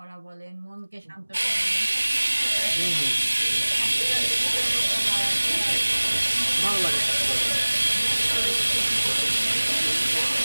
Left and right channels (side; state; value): both; inverted; correlation -1.00